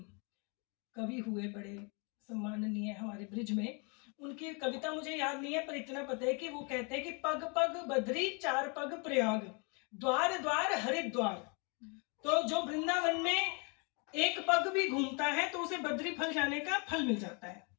कवि हुए, बड़े सम्माननीय हमारे ब्रिज में, उनकी कविता मुझे याद नहीं है, पर इतना पता है कि वो कहते हैं कि पग पग बद्री चार पग प्रयाग, द्वार द्वार हरिद्वार। तो जो वृंदावन में एक पग भी घूमता है तो उसे बद्री फल जाने का फल मिल जाता है,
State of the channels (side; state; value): right; quieter; 34.1 dB